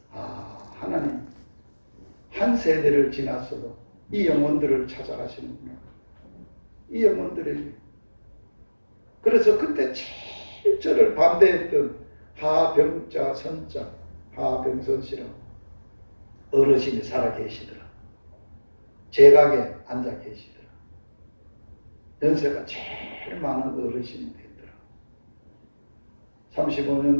하나님 한 세대를 지났어도 이 영혼들을 찾아가시는구나. 이 영혼들에게. 그래서 그때 제일 저를 반대했던 하병자 선자 하병선씨라고 어르신이 살아계시더라. 제각에 앉아 계시더라. 연세가 제일 많은 어르신이 되더라.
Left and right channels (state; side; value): inverted; both; correlation -1.00